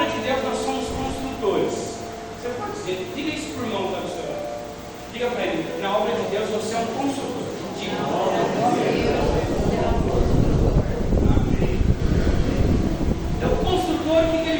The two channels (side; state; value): both; identical; correlation 1.00